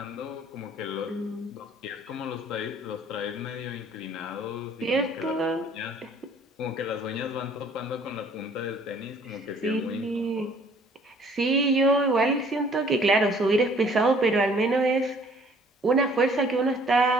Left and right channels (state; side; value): normal; both; correlation 0.56